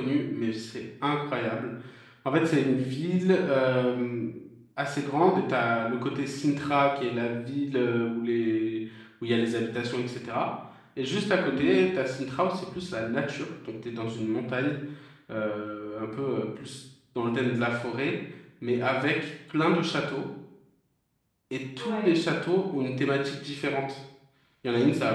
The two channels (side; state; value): both; identical; correlation 1.00